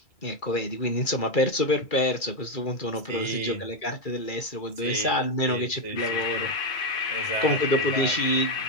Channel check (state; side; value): late; right; 2.3 ms